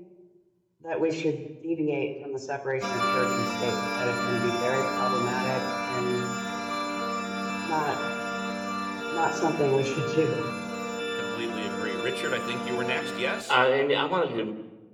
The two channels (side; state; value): both; identical; correlation 1.00